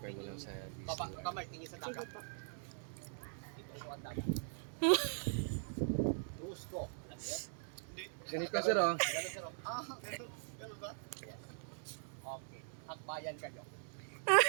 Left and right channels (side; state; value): left; silent; 50 dB below the other